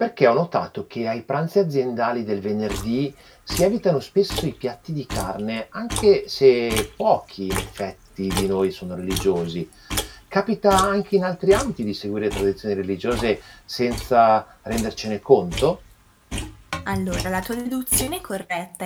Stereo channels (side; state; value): both; identical; correlation 1.00